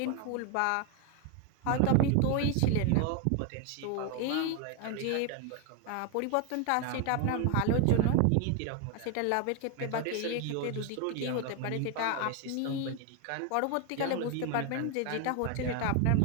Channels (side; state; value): both; different; correlation 0.01